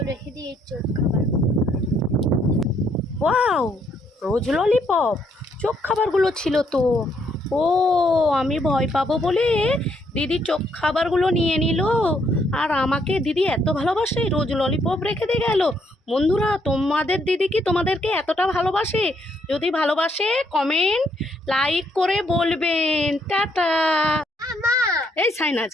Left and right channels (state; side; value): normal; both; correlation 0.71